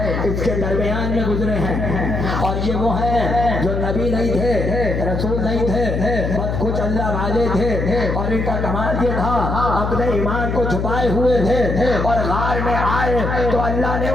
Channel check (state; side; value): noise; left; hum, 2 dB below the sound